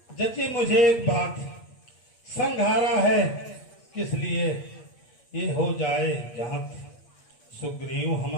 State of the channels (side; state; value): right; late; 8.6 ms